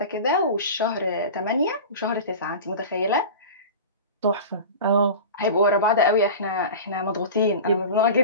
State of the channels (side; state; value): both; inverted; correlation -0.32